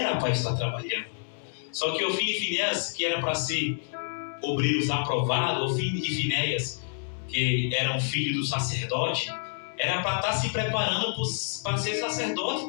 para estar trabalhando. Só que Ofni e Finéias, que era para ser obreiros aprovados, Ofni e Finéias, que eram filhos do sacerdote, era para estar se preparando para ser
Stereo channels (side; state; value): right; silent; digital silence